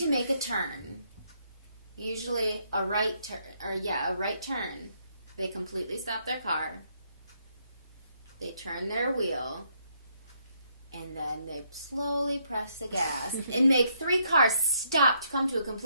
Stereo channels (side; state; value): both; inverted; correlation -0.73